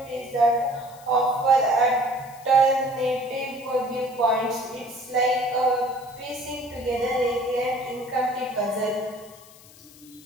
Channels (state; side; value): noise; left; hiss, 23 dB below the sound